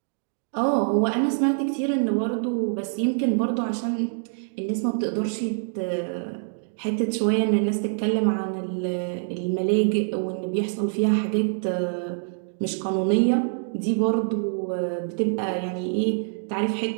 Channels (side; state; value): left; silent; digital silence